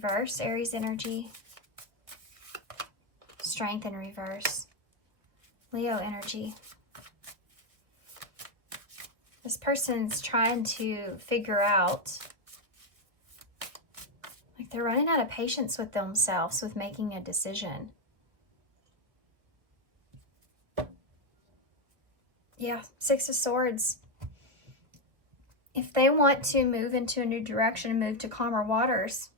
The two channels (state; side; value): late; left; 1.9 ms